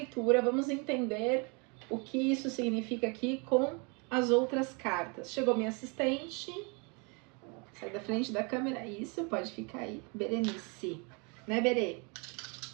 vamos entender o que isso significa aqui com as outras cartas. Chegou minha assistente, sai da frente da câmera, isso, pode ficar aí, Berenice, né, Berê?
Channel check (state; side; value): quieter; left; 32.7 dB